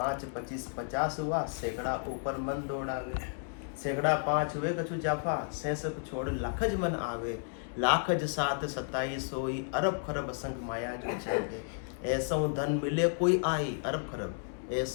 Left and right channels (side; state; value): right; silent; digital silence